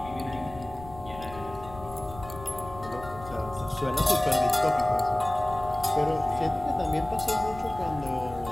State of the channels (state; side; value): noise; left; rumble, 16 dB below the sound